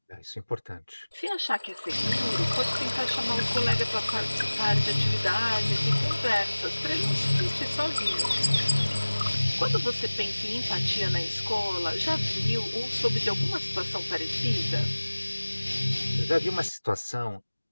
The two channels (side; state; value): both; inverted; correlation -1.00